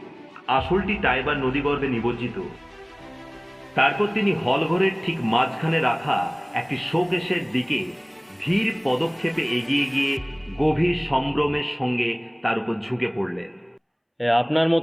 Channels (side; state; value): both; identical; correlation 1.00